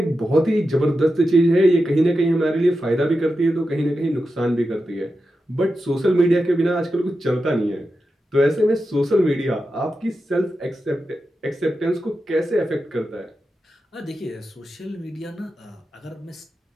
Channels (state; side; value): normal; both; correlation 0.90